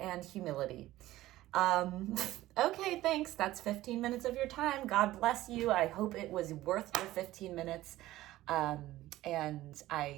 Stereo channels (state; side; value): quieter; left; 15.9 dB